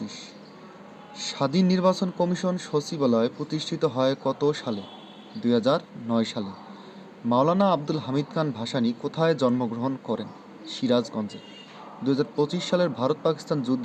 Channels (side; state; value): both; identical; correlation 1.00